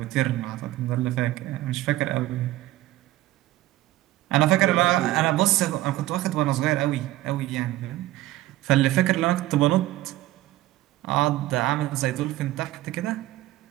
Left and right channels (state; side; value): quieter; left; 16.1 dB